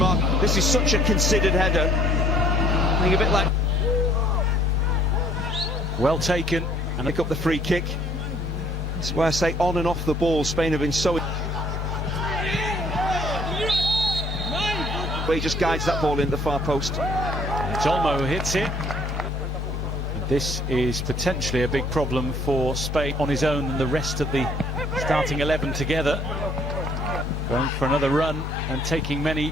This is such a considered header. I think a bit like well taken and pick up the free kick. That's why I say on and off the ball, Spain have been so. Where he just guides that ball in the far post. Olmo hits it. This is potentially a big problem for Spain on his own and the rest of the starting 11 together. Going for another run and taking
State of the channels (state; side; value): normal; both; correlation 0.61